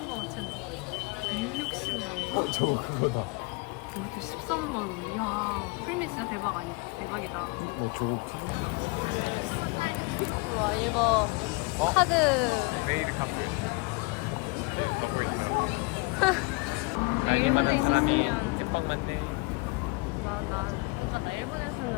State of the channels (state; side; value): quieter; right; 27.8 dB